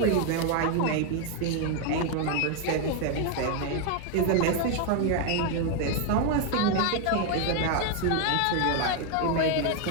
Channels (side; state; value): both; different; correlation 0.01